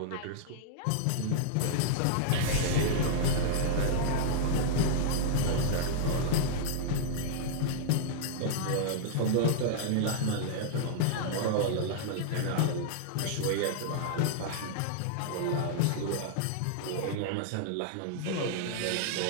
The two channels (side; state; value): both; different; correlation -0.01